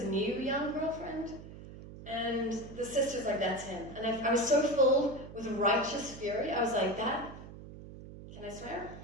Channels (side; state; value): right; noise; hum, 14 dB below the sound